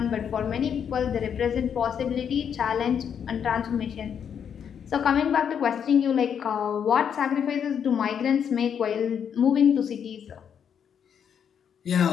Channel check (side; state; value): right; quieter; 7.9 dB